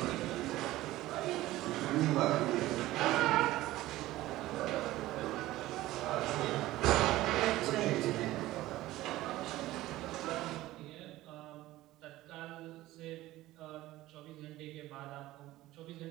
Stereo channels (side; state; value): left; quieter; 16.6 dB